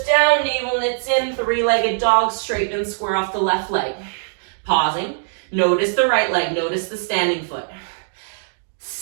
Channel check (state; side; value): silent; left; digital silence